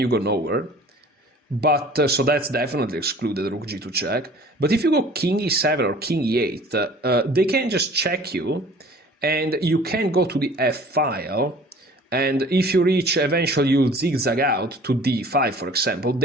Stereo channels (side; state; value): both; normal; correlation 0.48